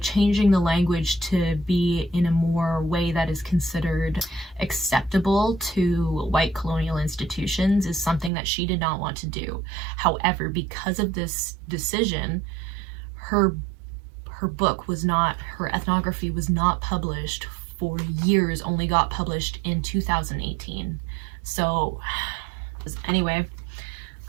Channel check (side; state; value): left; drops out; at 8.3 s